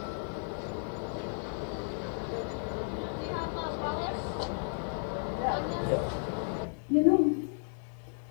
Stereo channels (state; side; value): silent; right; 55 dB below the other